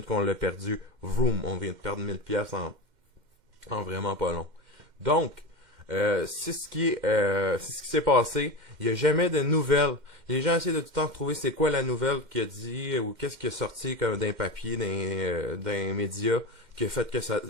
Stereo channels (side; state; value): left; late; 2.1 ms